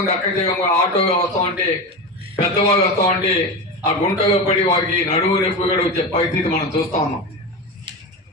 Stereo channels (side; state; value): both; normal; correlation 0.22